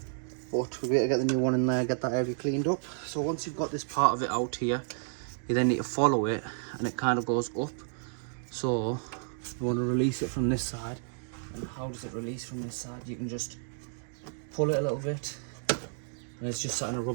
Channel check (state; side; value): silent; left; digital silence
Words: but we better get the new one in there, get that area cleaned up. So once you've got this part of it out here, you then need to follow it, and it kind of goes up. So you want to release it from this side. And how does it release from this side? You can just pull it a little bit, and it's just sat in a